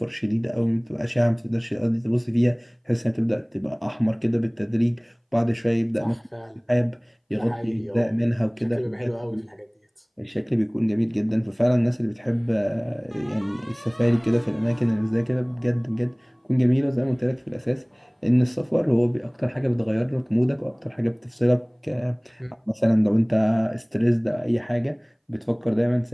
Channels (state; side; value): identical; both; correlation 1.00